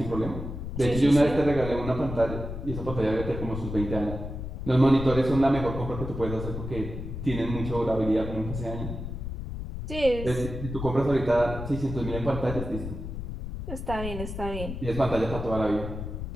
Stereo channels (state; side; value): noise; left; rumble, 7 dB below the sound